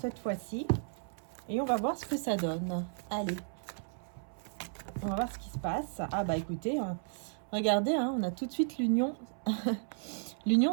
fois-ci. Et on va voir ce que ça donne. Allez. On va voir ce qui se passe. Ah bah écoutez, regardez, hein, on a tout de suite l'union l'union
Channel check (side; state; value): left; silent; 55 dB below the other